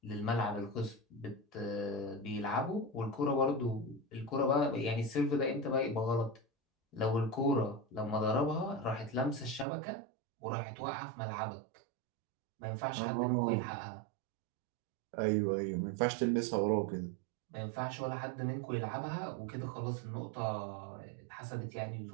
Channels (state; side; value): drops out; left; at 9.7 s